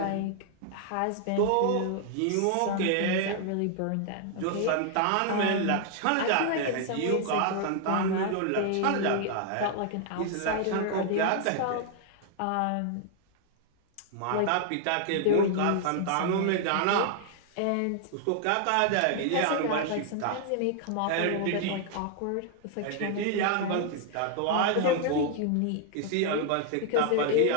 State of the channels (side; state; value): both; different; correlation 0.00